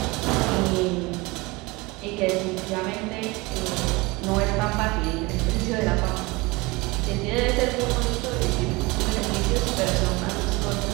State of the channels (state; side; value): quieter; left; 23.8 dB